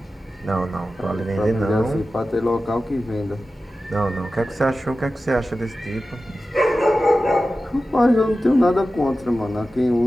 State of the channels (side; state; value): both; normal; correlation 0.94